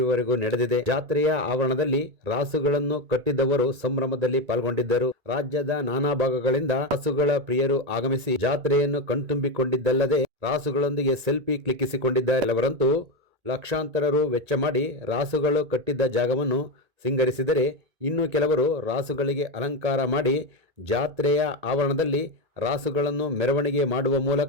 ನಡೆದಿದೆ. ಜಾತ್ರೆಯ ಆವರಣದಲ್ಲಿ ರಾಸುಗಳನ್ನು ಕಟ್ಟಿದ್ದವರು ಸಂಭ್ರಮದಲ್ಲಿ ಪಾಲ್ಗೊಂಡಿದ್ದರು. ರಾಜ್ಯದ ನಾನಾ ಭಾಗಗಳಿಂದ ರಾಸುಗಳ ಪ್ರಿಯರು ಆಗಮಿಸಿ ಜಾತ್ರೆಯನ್ನು ಕಣ್ತುಂಬಿಕೊಂಡಿದ್ದಲ್ಲದೆ ರಾಸುಗಳೊಂದಿಗೆ ಸೆಲ್ಫಿ ಕ್ಲಿಕ್ಕಿಸಿಕೊಂಡಿದ್ದಾರೆ. ಕೆಲವರಂತೂ ಲಕ್ಷಾಂತರ ರು ವೆಚ್ಚ ಮಾಡಿ ರಾಸುಗಳು ಕಟ್ಟಿದ್ದ ಜಾಗವನ್ನು ಸಿಂಗರಿಸಿದರೆ, ಇನ್ನು ಕೆಲವರು ರಾಸುಗಳಿಗೆ ಅಲಂಕಾರ ಮಾಡಿ ಜಾತ್ರೆಯ ಆವರಣದಲ್ಲಿ ರಾಸುಗಳನ್ನು ಮೆರವಣಿಗೆ ಮಾಡುವ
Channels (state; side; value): late; left; 2.3 ms